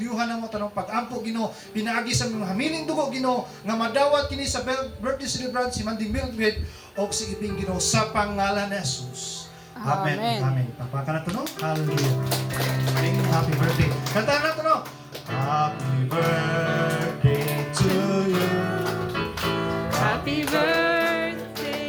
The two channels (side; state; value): both; identical; correlation 1.00